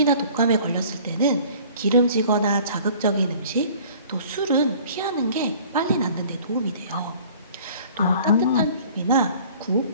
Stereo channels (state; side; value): inverted; both; correlation -0.49